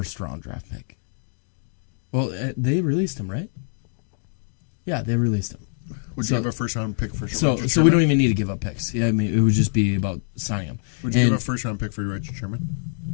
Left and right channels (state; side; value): silent; right; 62 dB below the other